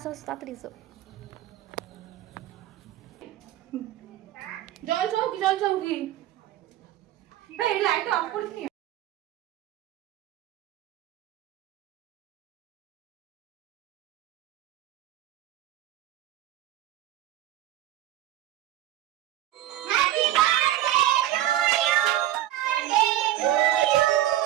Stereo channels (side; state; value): left; quieter; 13.5 dB